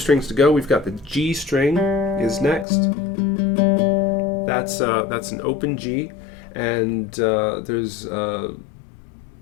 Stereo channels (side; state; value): right; drops out; at 2.7 s